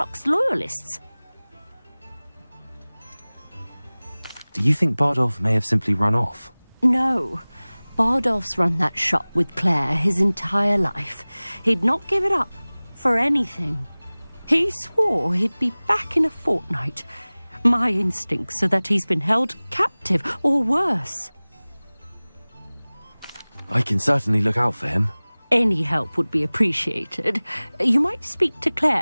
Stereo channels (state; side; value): inverted; both; correlation -1.00